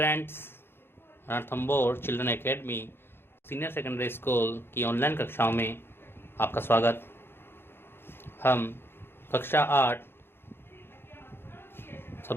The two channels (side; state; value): right; late; 0.11 ms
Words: Ranthambore children academy senior secondary school की online कक्षाओं में आपका स्वागत। हम कक्षा 8